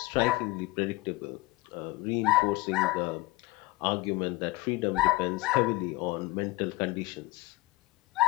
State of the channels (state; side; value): quieter; right; 21.2 dB